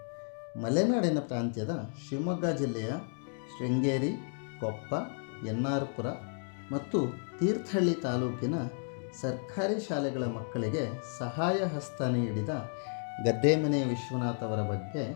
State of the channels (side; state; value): right; silent; 56 dB below the other